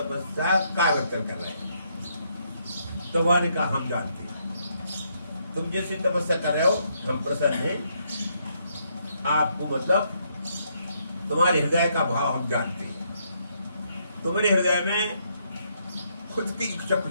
कागज कर रहे हैं। तो वाने का हम जानते हैं। तुम जैसे तपस्या कर रहे हो हम प्रसन्न हैं। आपको मतलब तुम्हारे हृदय का भाव हम जानते हैं। तुम्हारे हृदय में खुद की इच्छा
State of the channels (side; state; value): both; inverted; correlation -0.74